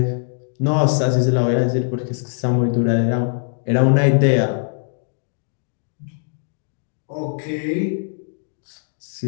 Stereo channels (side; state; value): right; silent; digital silence